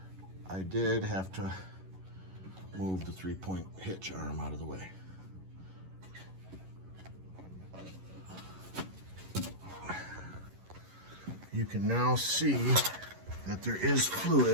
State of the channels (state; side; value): late; left; 11 ms